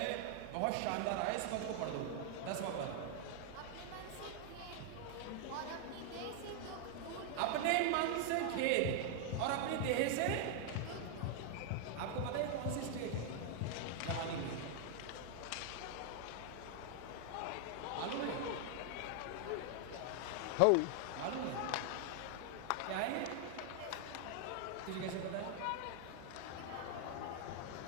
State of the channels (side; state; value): both; different; correlation 0.00